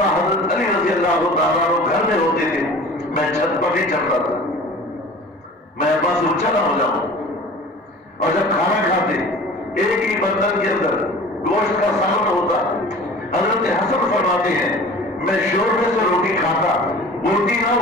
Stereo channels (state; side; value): normal; both; correlation 0.42